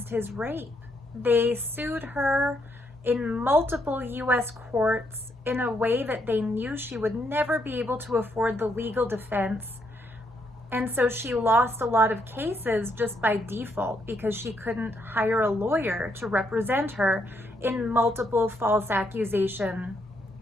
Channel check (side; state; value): both; normal; correlation 0.75